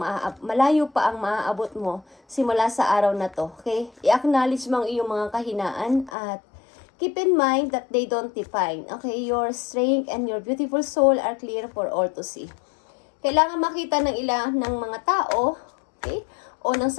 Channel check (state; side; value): drops out; right; at 6.1 s